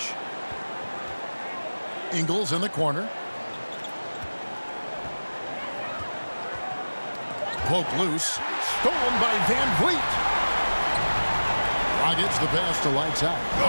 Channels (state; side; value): inverted; both; correlation -1.00